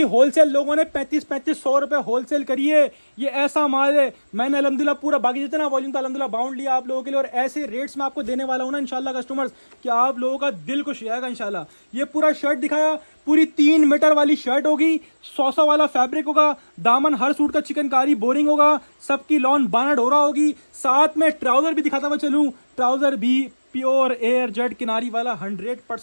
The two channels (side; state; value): both; inverted; correlation -1.00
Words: होलसेल लोगों ने 3500 रुपए होलसेल करी है। ये ऐसा माल है, मैंने अलहमदिल्ला पूरा बाकी जितना वॉल्यूम था अलहमदिल्ला बाउंड लिया आप लोगों के लिए, और ऐसे रेट्स में आपको देने वाला हूँ ना इंशाल्लाह कस्टमर्स कि आप लोगों का दिल खुश जाएगा इंशाल्लाह। ये पूरा शर्ट दिखाया, पूरी 3 मीटर वाली शर्ट होगी, 100 वाला फैब्रिक होगा, दामन हर सूट का चिकनकारी बोरिंग होगा, सबकी लॉन बाना डोरा होगी। साथ में ट्राउजर भी दिखाता हुआ चलूँ, ट्राउजर भी प्योर एयर जेट किनारी वाला